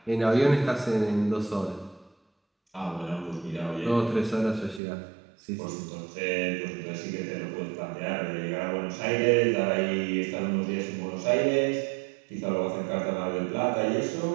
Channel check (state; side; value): drops out; left; at 4.8 s